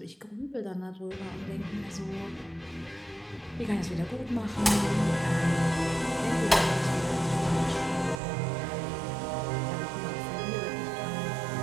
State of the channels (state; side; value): drops out; left; at 8.2 s